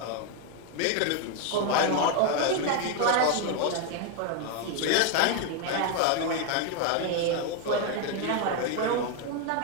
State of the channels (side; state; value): both; different; correlation 0.01